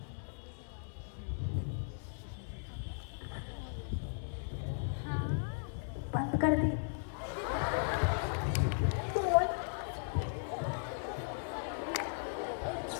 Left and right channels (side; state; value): right; silent; 53 dB below the other